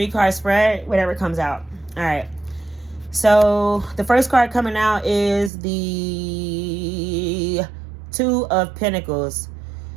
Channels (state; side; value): drops out; left; at 5.5 s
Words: spread, whatever comes out. All right. So the first card coming out is the 2 of Pentacles.